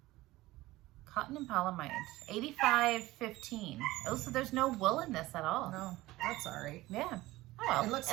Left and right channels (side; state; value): left; quieter; 18.2 dB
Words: Cotton and polyamide. 85.15. Oh, so there's no wool in this at all. No, that's all right. Yeah. Oh well.